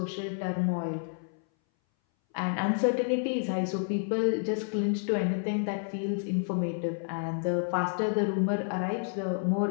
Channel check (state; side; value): silent; right; 58 dB below the other